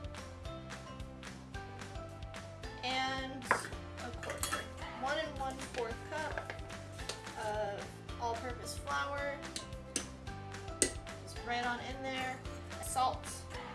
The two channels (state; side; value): identical; both; correlation 1.00